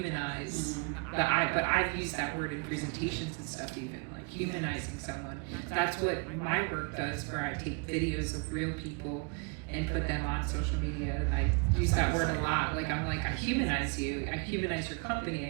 But I've used that word in presentations and stuff, even like humanizing someone. That's what my work does, where I take videos of real people and put them on social media, and I use that word a lot. Like, I'm like, I humanize you, I humanize your company, I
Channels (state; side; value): quieter; left; 33.0 dB